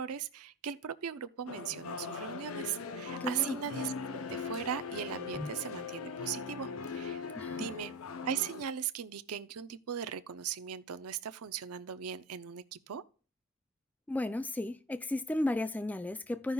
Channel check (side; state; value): both; normal; correlation 0.32